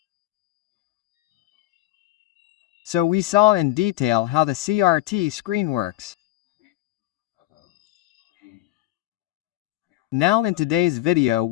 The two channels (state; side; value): quieter; right; 15.9 dB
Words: So we saw in detail how the CRT screen works. Now in today's video